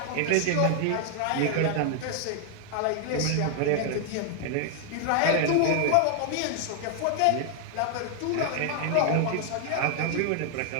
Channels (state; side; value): different; both; correlation 0.00